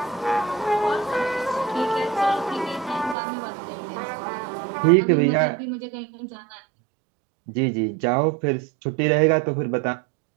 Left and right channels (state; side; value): drops out; left; at 3.2 s